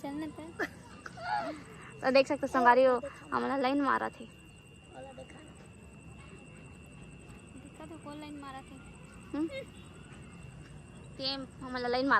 पे तो देख सकते संगारी हो हमारा लाइन मारा थे। दिक्कत है कौन लाइन मारा थे? टेम हमारा लाइन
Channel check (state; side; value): identical; both; correlation 1.00